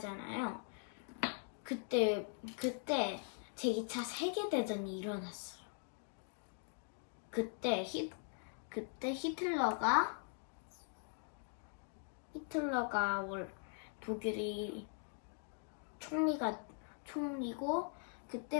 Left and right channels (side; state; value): right; silent; 50 dB below the other